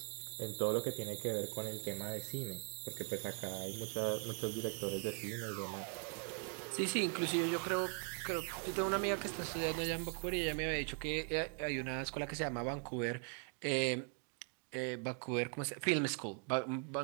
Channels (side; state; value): left; quieter; 38.0 dB